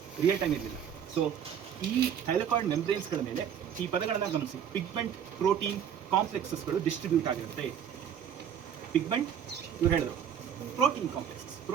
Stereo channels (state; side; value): quieter; left; 8.7 dB